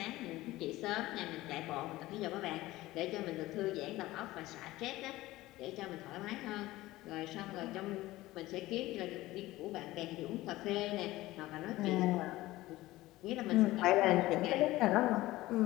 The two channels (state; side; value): quieter; right; 17.6 dB